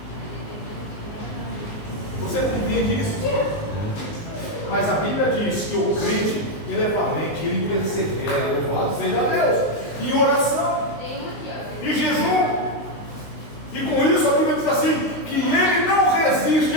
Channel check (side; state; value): right; late; 19 ms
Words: Você compreende isso? Mas a Bíblia diz que o crente, ele é valente, ele persevera, louvado seja Deus, em oração, em jejum. E com isso a Bíblia diz assim, que ele não resiste,